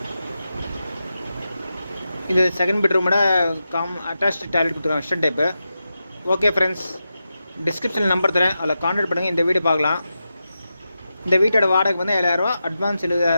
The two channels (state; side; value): inverted; both; correlation -0.90